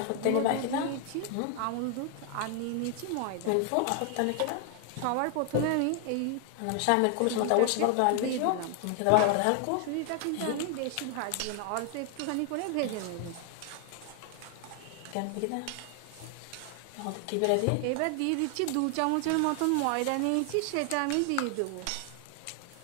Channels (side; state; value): both; different; correlation 0.00